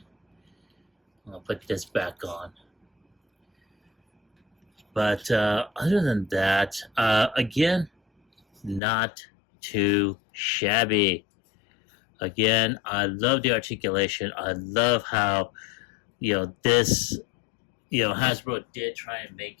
I'll put this back on. But other than that, again, not too shabby. Again, I love the articulation. I love how, this, Hasbro did try and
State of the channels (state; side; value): drops out; right; at 8.8 s